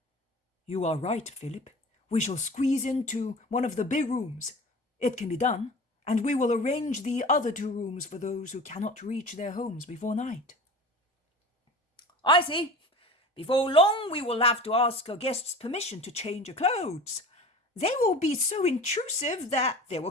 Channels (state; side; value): normal; both; correlation 0.38